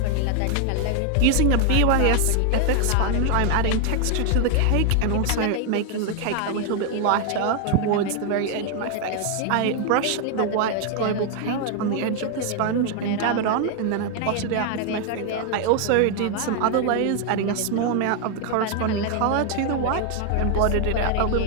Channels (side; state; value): both; different; correlation 0.01